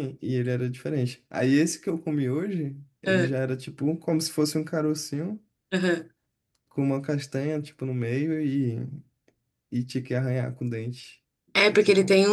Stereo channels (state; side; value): identical; both; correlation 1.00